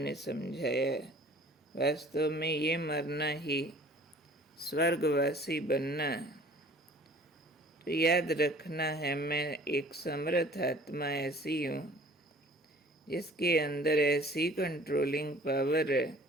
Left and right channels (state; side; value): normal; both; correlation 0.50